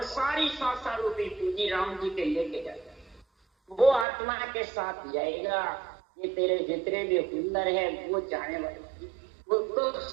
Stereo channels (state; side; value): drops out; left; at 4.0 s